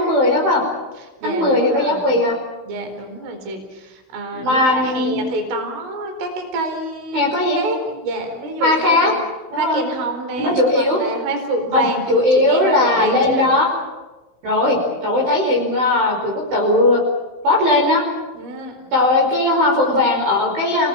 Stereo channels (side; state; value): left; late; 16 ms